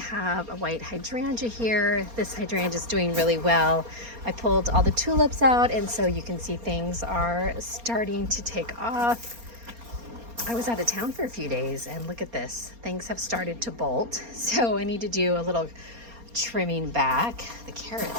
a white hydrangea here. This hydrangea is doing really well. I pulled all the tulips out, and so you can see things are starting to take off. I was out of town for a few days, and look at this. Things have started to bolt, so I need to do a little trimming back. The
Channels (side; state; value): left; late; 4.3 ms